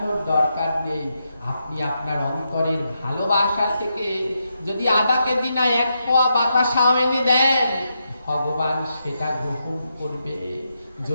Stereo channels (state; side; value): inverted; both; correlation -0.83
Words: দরকার নেই। আপনি আপনার অন্তরের ভালোবাসা থেকে যদি আধা কেজি না 1 পোয়া বাতাসাও এনে দেন, ভগবান সেটা গ্রহণ করবে,